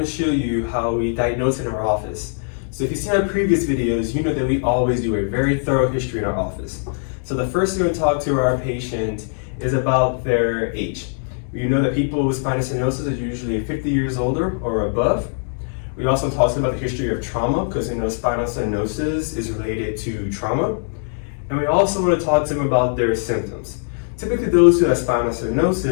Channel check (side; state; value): right; silent; digital silence